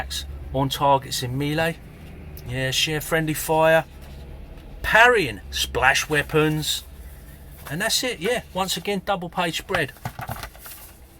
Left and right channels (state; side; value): identical; both; correlation 1.00